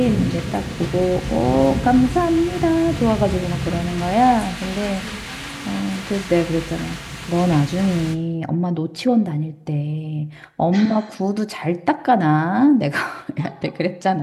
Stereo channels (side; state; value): both; identical; correlation 1.00